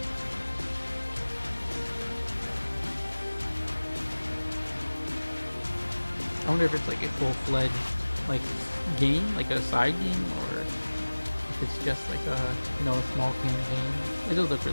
I wonder if it's like a full-fledged like game, like a side game, or if it's just like a, you know, a small campaign. It does look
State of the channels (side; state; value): both; inverted; correlation -1.00